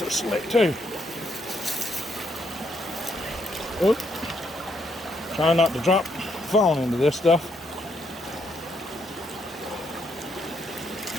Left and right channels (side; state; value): both; normal; correlation 0.75